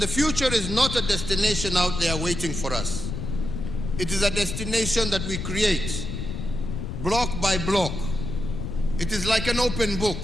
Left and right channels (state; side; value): noise; left; rumble, 5 dB below the sound